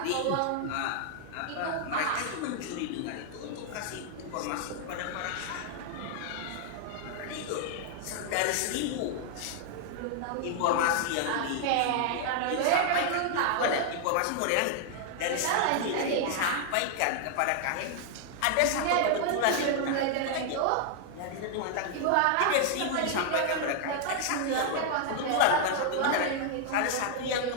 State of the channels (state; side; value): different; both; correlation 0.00